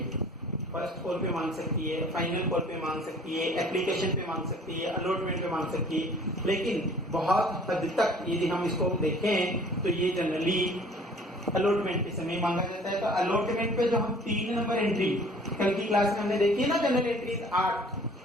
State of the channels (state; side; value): normal; both; correlation 0.51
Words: फर्स्ट कॉल पे मांग सकती है, फाइनल कॉल पे मांग सकती है, एप्लीकेशन पे मांग सकती है, अलॉटमेंट पे मांग सकती है। लेकिन बहुत हद तक यदि हम इसको देखें तो ये जनरली अलॉटमेंट के समय मांगा जाता है। तो अलॉटमेंट पे जो हम 3 नंबर एंट्री कल की क्लास में हमने देखी है ना, जनरल एंट्रीज 8,